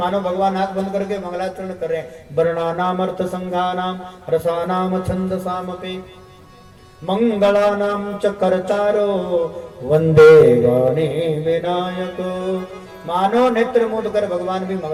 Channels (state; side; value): identical; both; correlation 1.00